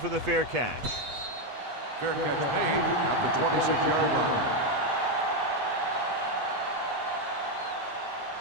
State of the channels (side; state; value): left; late; 8.2 ms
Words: the fair catch. Fair catch made at the 26-yard line.